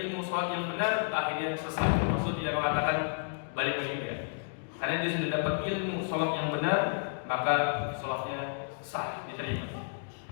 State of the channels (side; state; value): right; silent; digital silence